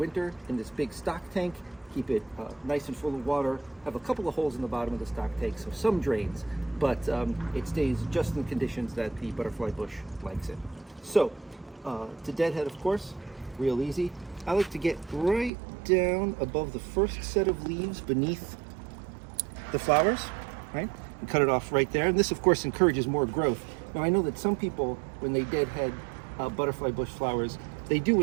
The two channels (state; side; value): drops out; left; at 15.5 s